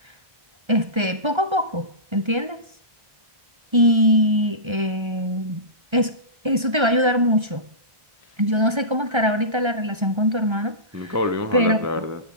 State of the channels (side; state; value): left; late; 1.3 ms